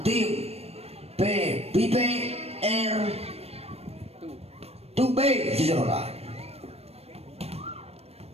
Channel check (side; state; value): left; late; 0.29 ms